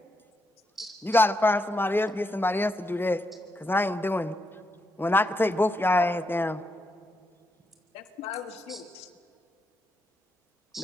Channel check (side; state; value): both; normal; correlation 0.82